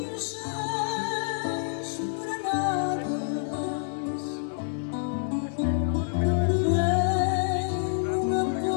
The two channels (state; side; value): silent; right; 58 dB below the other